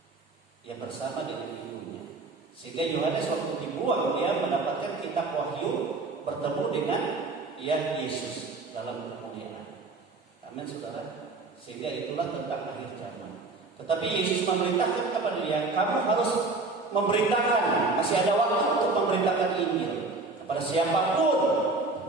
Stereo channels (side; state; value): left; quieter; 3.4 dB